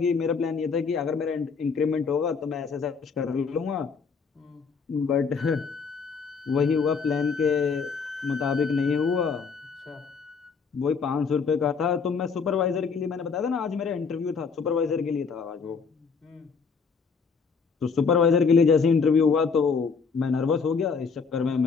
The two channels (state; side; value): quieter; right; 5.4 dB